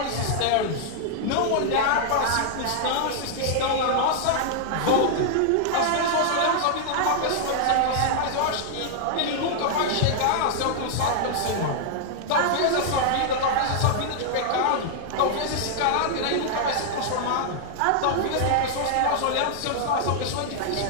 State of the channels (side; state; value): both; different; correlation -0.01